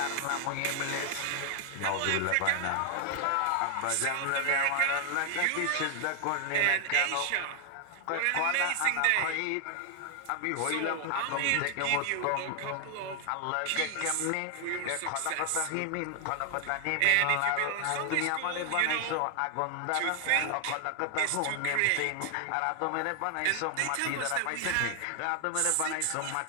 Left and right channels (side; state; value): both; different; correlation 0.00